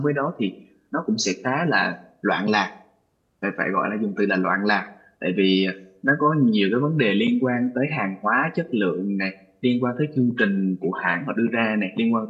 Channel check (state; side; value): identical; both; correlation 1.00